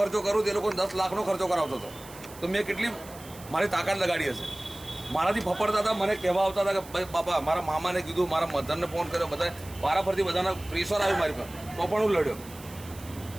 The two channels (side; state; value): right; noise; hiss, 19 dB below the sound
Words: કરું તે લોકોને 10 લાખનો ખર્ચો કરાવતો હતો. તો મેં કેટલી મારી તાકાત લગાડી હશે. મારાથી ફફડતા હતા, મને કહેવા આવતા હતા કે ભાઈ બાપા, મારા મામાને કીધું, મારા મધરને ફોન કર્યો, બધા વારાફરતી બધાના પ્રેશર આવ્યું મારી પર, તો પણ હું લડ્યો.